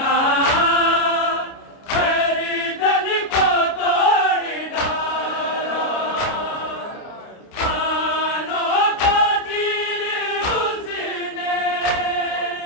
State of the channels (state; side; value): late; right; 29 ms